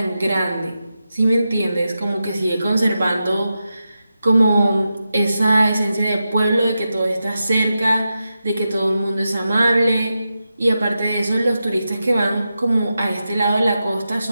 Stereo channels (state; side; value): inverted; both; correlation -0.90